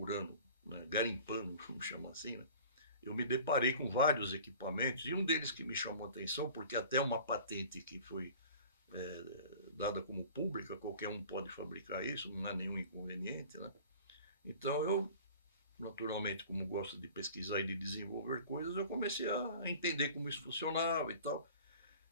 né, garimpando, vamos chamar assim, né, eu me deparei com vários equipamentos, e um deles que me chamou a atenção, porque até uma patente que foi dada como pública, qualquer um pode fabricar isso, não há nenhum inconveniente, né? Então eu, naturalmente, como gosto de pesquisar e de desenvolver coisas, eu comecei a entender como isso funcionava e tal.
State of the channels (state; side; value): inverted; both; correlation -0.44